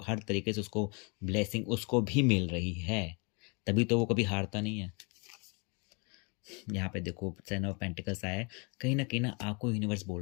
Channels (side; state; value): right; quieter; 32.5 dB